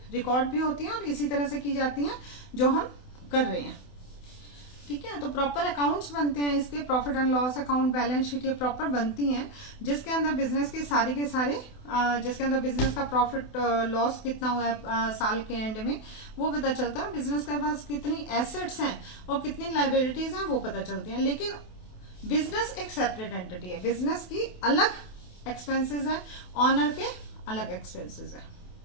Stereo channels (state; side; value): late; right; 28 ms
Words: रिकॉर्ड भी होती हैं और इसी तरह से की जाती हैं जो हम कर रहे हैं, ठीक है। तो प्रॉपर अकाउंट्स बनते हैं इसके, profit and loss account, balance sheet, ये प्रॉपर बनती हैं, जिसके अंदर बिजनेस के सारे जिसके अंदर बिजनेस का प्रॉफिट लॉस कितना हुआ है साल के एंड में वो पता चलता है, बिजनेस के पास कितनी एसेट्स हैं और कितनी लाइबिलिटीज हैं वो पता चलती हैं। लेकिन बिजनेस एक सेपरेट एंटिटी है, बिजनेस की अलग एक्सपेंसेस हैं, ऑनर के अलग एक्सपेंसेस है,